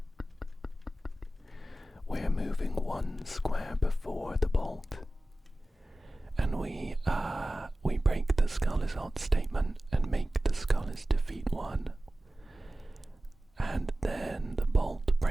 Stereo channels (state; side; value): normal; both; correlation 0.96